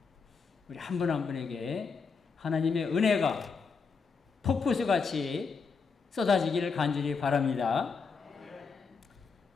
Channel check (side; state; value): right; quieter; 5.2 dB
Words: 우리 한 분 한 분에게 하나님의 은혜가 폭포수같이 쏟아지기를 간절히 바랍니다.